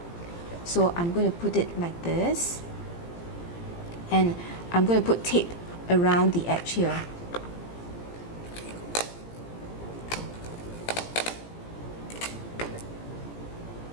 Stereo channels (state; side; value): late; right; 17 ms